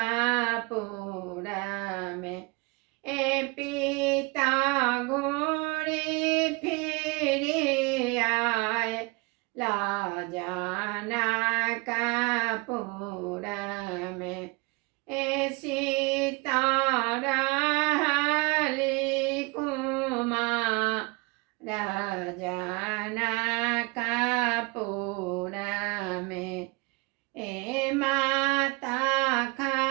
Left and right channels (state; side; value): quieter; left; 27.4 dB